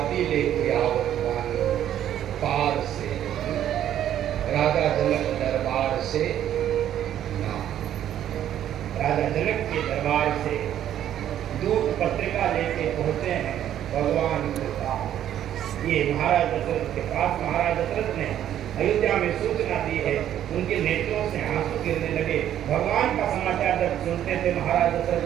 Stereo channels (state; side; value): quieter; left; 11.0 dB